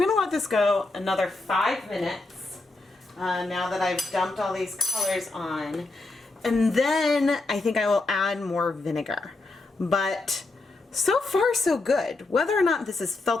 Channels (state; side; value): quieter; right; 3.2 dB